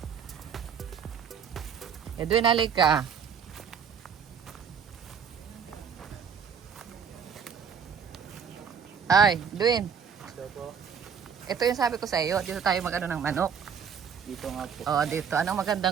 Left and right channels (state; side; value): quieter; left; 7.0 dB